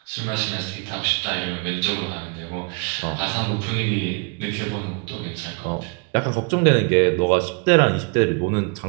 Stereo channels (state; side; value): quieter; left; 33.8 dB